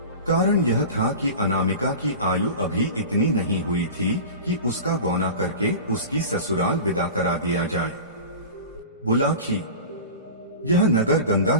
कारण यह था कि अनामिका की आयु अभी इतनी नहीं हुई थी कि उसका गौना करके उसकी ससुराल विदा करा दिया जाए। बुलाखी, यह नगर गंगा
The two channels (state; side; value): inverted; both; correlation -0.33